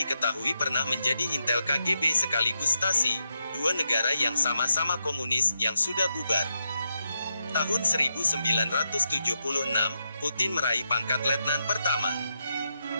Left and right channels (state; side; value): inverted; both; correlation -0.84